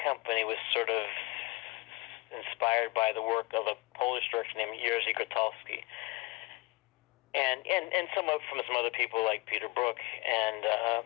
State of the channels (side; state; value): right; quieter; 24.7 dB